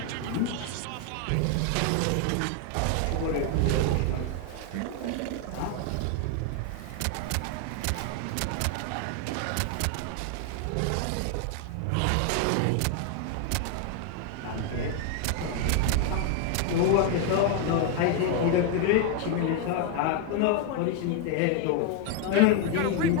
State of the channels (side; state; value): both; different; correlation 0.00